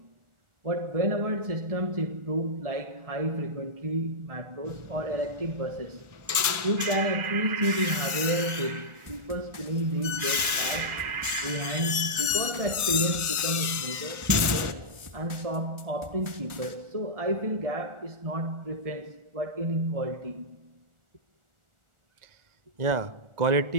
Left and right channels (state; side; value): late; left; 1.4 ms